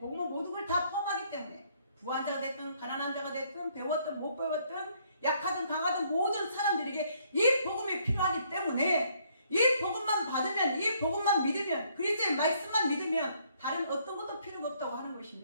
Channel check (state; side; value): inverted; both; correlation -0.67